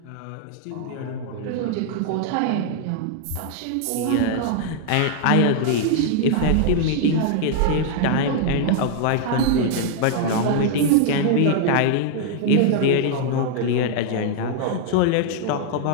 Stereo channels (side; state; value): both; different; correlation 0.00